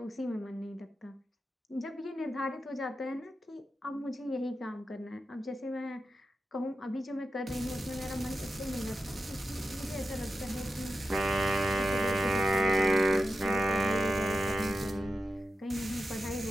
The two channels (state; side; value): normal; both; correlation 0.89